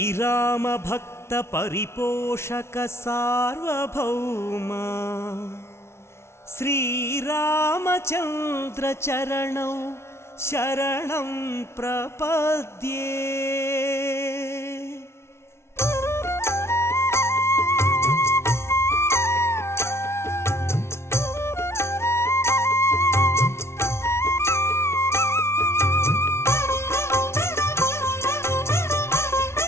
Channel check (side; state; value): right; late; 0.13 ms